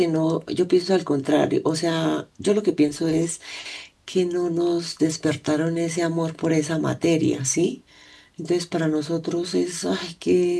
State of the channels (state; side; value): identical; both; correlation 1.00